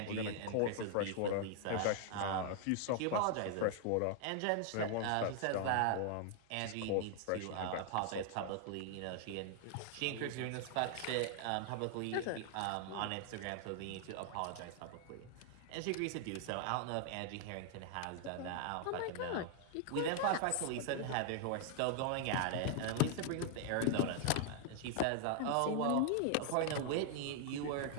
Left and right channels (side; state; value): both; different; correlation 0.00